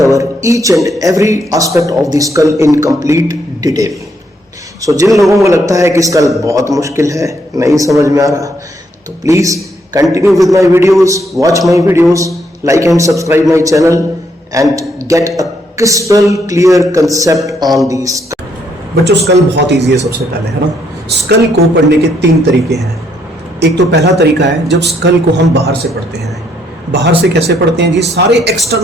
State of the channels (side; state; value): both; normal; correlation 0.73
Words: each and every aspect of the skull in complete detail. So जिन लोगों को लगता है कि school बहुत मुश्किल है, नहीं समझ में आ रहा, तो please continue with my videos, watch my videos, like and subscribe my channel and get a crystal clear concept on the skull. बच्चों, स्कल बहुत इजी है. सबसे पहले है ना, स्कल को पढ़ने के 3 तरीके हैं. एक तो पहला तरीका है जब स्कल को हम बाहर से पढ़ते हैं. बाहर से कैसे पढ़ते हैं जी? सारे